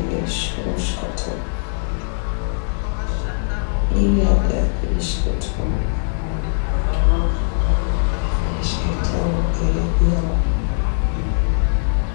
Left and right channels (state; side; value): silent; right; digital silence